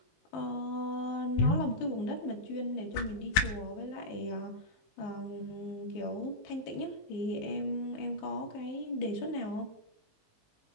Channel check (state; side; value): late; right; 19 ms